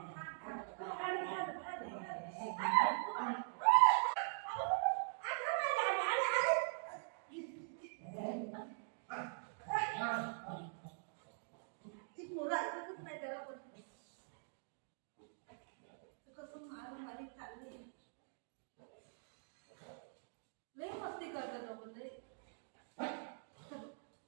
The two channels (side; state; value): left; silent; digital silence